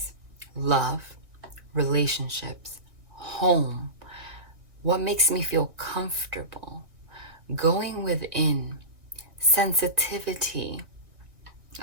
love, relationships, home, what makes me feel comfortable, going within, sensitivity,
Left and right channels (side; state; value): left; late; 1.8 ms